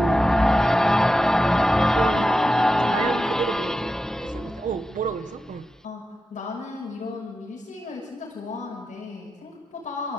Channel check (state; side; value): normal; both; correlation 0.91